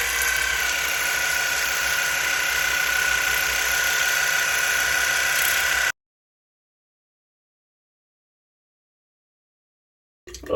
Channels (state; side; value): identical; both; correlation 1.00